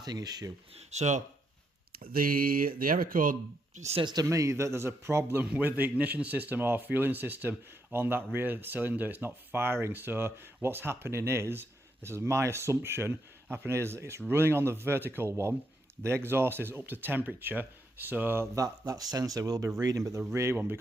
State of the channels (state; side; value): normal; both; correlation 0.79